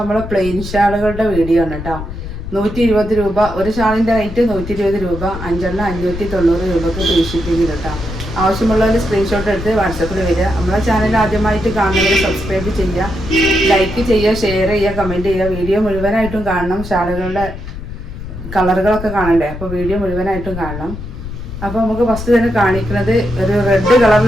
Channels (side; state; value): left; noise; rumble, 9 dB below the sound